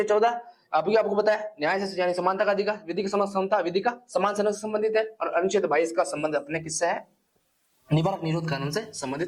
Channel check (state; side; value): identical; both; correlation 1.00